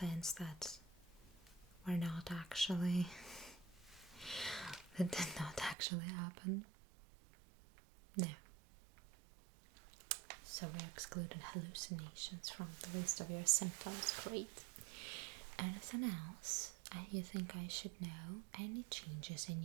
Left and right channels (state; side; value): drops out; left; at 5.8 s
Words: that were not actually, that did not actually happen? No. So we excluded hallucinations from the list of your symptoms. Great. Anything else you think I should know? Any changes in